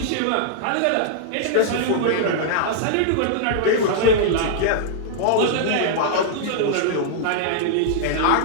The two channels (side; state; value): both; different; correlation -0.01